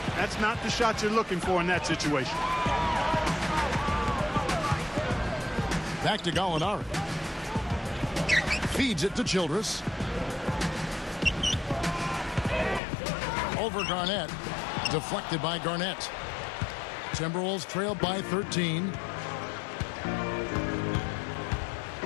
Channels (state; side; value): drops out; right; at 12.8 s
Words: That's not the shot you're looking for in that situation. Back to Gallinari. Feeds it to Childress. Over Garnett. Deflected by Garnett. Timberwolves trail by 13.